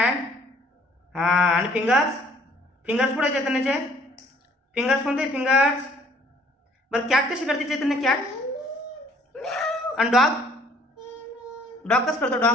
हां, आणि फिंगर्स कुठे आहे चैतन्याचे? फिंगर्स कोणते? फिंगर्स. बरं कॅट कशी करते चैतन्य? कॅट. आणि डॉग कसं करतो?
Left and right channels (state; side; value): normal; both; correlation 0.59